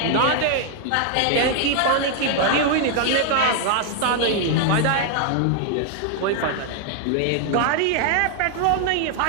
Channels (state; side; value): different; both; correlation 0.00